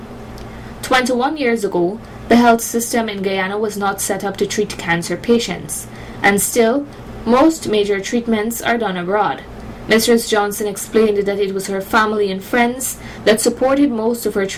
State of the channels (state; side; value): identical; both; correlation 1.00